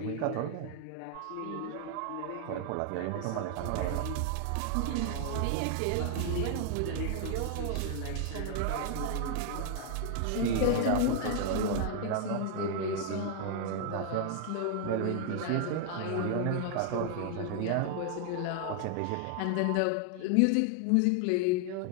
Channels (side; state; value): both; different; correlation 0.00